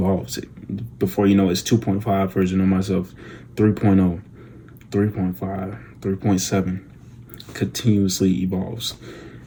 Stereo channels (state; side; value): identical; both; correlation 1.00